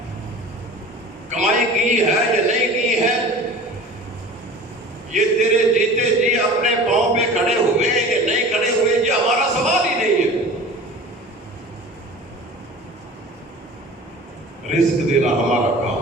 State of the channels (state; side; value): normal; both; correlation 0.39